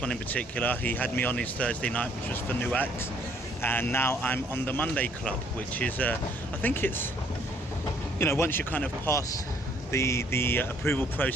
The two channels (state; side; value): normal; both; correlation 0.63